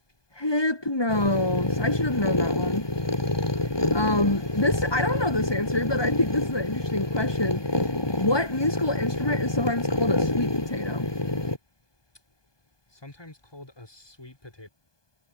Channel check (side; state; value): right; late; 1.2 ms